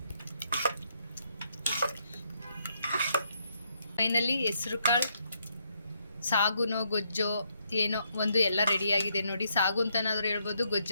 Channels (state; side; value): inverted; both; correlation -0.75